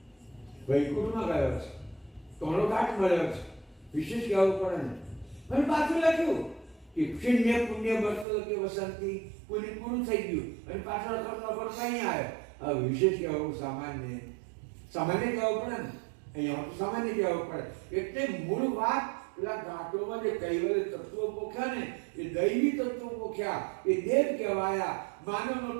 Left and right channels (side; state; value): left; drops out; at 8.2 s